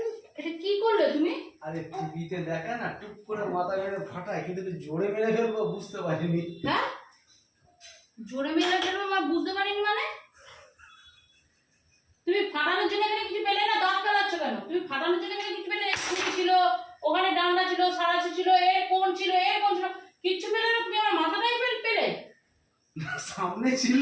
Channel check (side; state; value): both; identical; correlation 1.00